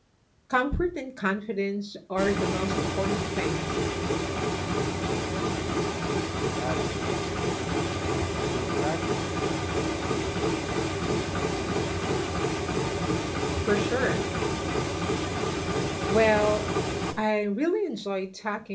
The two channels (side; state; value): both; identical; correlation 1.00